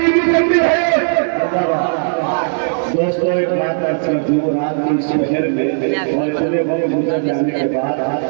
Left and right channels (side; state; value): left; silent; digital silence